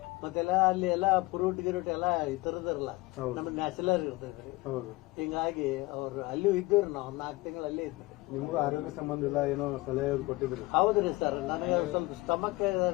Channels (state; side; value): quieter; right; 21.5 dB